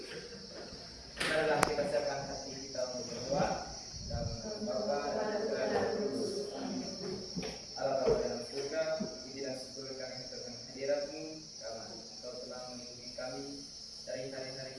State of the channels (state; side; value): identical; both; correlation 1.00